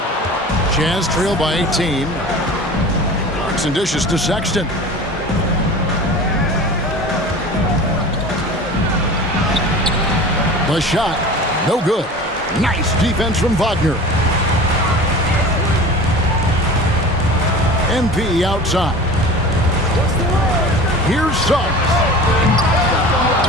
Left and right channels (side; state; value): both; normal; correlation 0.37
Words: Jazz trail by 18. Clarkson dishes to Sexton. The shot, no good. Nice defense from Wagner. MP outside. Here's Suggs.